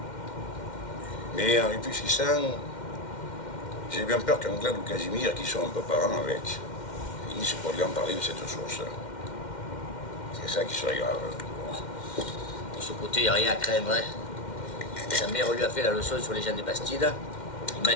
Mais en réfléchissant, j'ai bien peur qu'Anglade ou Casimir, qui sont un peu parents avec, finissent par lui en parler de cette source. C'est ça qui serait grave. De ce côté, il n'y a rien à craindre. Hein. Sa mère lui a fait la leçon sur les gens des Bastides. Il m'a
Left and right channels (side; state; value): right; late; 2.1 ms